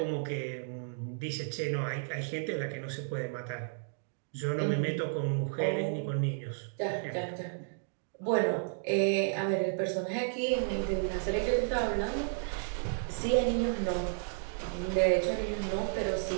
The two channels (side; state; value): left; silent; digital silence